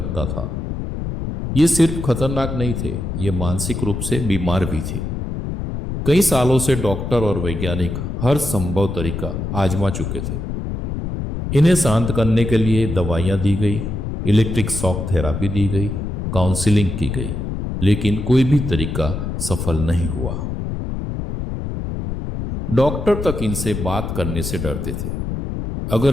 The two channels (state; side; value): noise; left; rumble, 4 dB below the sound